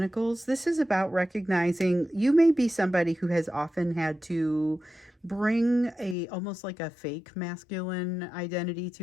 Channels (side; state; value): right; drops out; at 6.2 s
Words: This is about recognizing you may be somebody who has often had to bring almost like a fake masculine identity